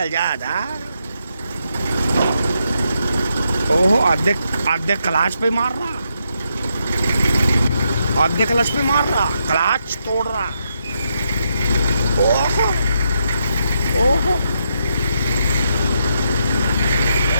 जा। ओहो, आधे क्लाच पे मार रहा, आधे क्लच पे मार रहा, क्लच तोड़ रहा। ओहो ओहो,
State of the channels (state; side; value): inverted; both; correlation -0.80